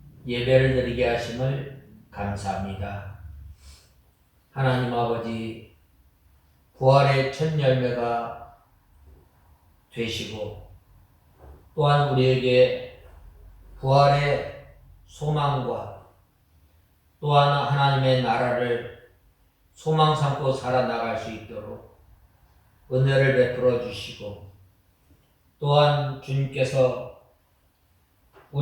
예배를 드리게 하심을 감사합니다. 하나님 아버지, 부활의 첫 열매가 되시고 또한 우리에게 부활의 소망과 또한 하나님의 나라를 소망 삼고 살아나갈 수 있도록 은혜를 베풀어 주시고 또한 주님께서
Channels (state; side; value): identical; both; correlation 1.00